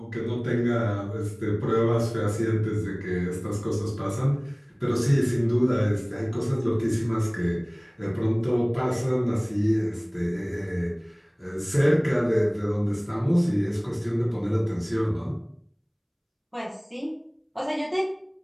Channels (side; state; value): both; identical; correlation 1.00